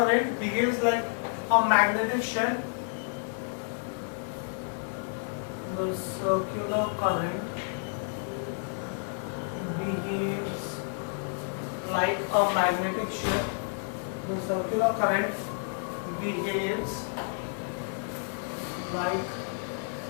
behaves like a magnetic shell. The circular current behaves like a magnetic shell. The circular current behaves like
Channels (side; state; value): right; silent; 58 dB below the other